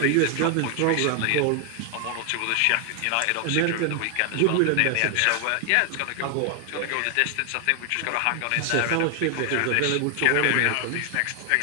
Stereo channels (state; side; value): different; both; correlation 0.00